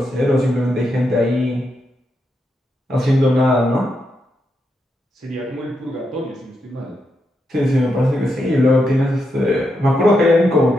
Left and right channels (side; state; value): both; normal; correlation 0.83